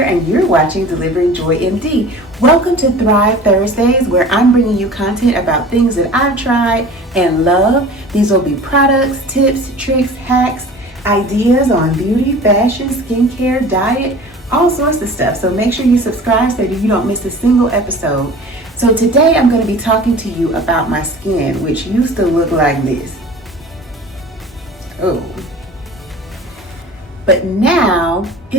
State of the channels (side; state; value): both; normal; correlation 0.41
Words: and you're watching Delivering Joy MD. Welcome to Thrive Thursdays, where I'm bringing you content about things that I've tried and love. These will be products, tips, tricks, hacks, ideas on beauty, fashion, skincare, diet, all sorts of stuff. So make sure you subscribe so that you don't miss a single episode. So today I'm going to be talking to you about my skin, which used to look like this. Oh. But now